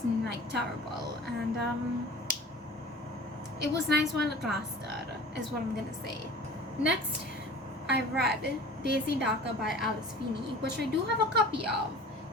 like terrible, and it was nice while it lasted, is what I'm gonna say. Next, I read Daisy Darker by Alice Feeney, which I do have a copy of,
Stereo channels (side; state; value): both; normal; correlation 0.42